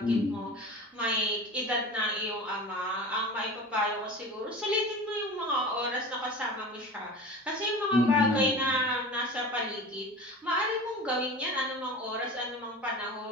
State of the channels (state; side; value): normal; both; correlation 0.34